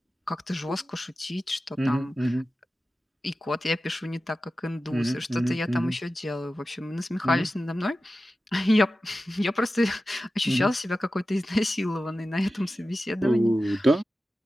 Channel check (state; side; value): normal; both; correlation 0.94